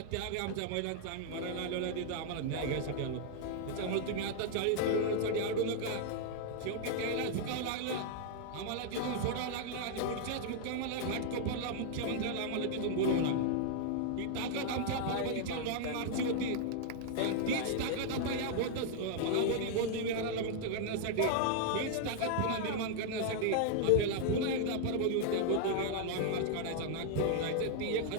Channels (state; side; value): different; both; correlation 0.00